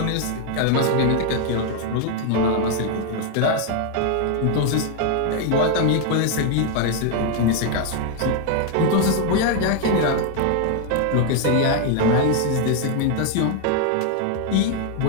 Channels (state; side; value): different; both; correlation 0.00